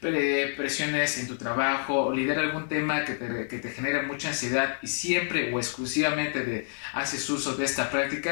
en tu trabajo o lidiar algún tema que te genere mucha ansiedad y siempre o exclusivamente haces uso de esta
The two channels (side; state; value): right; silent; digital silence